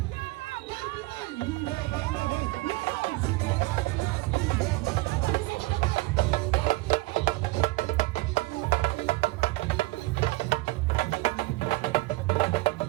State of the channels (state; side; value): quieter; left; 21.0 dB